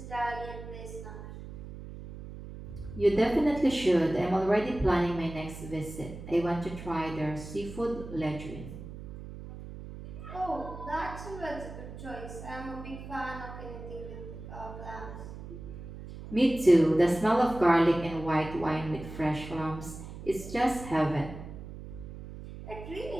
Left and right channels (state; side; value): noise; right; hum, 12 dB below the sound